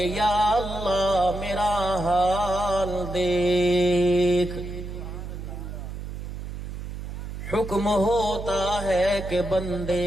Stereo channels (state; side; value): noise; right; hum, 8 dB below the sound